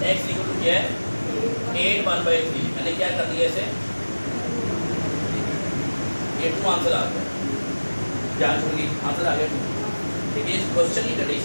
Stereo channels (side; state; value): both; inverted; correlation -1.00